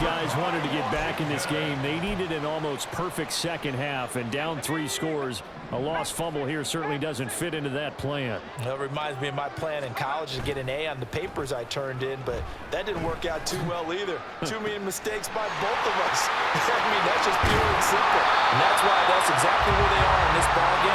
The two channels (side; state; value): both; identical; correlation 1.00